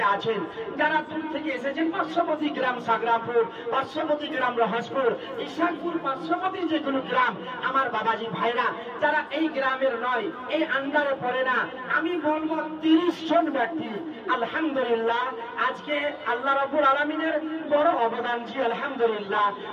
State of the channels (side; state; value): both; identical; correlation 1.00